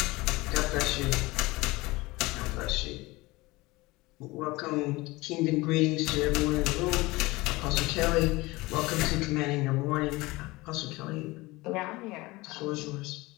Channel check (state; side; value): quieter; right; 21.5 dB